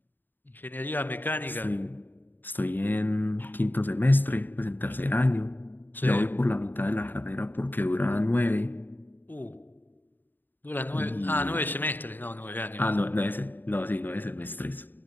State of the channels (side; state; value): right; late; 0.091 ms